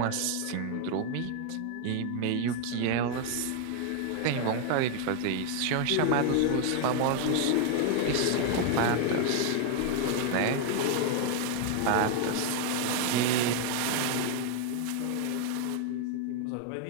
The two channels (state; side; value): different; both; correlation 0.00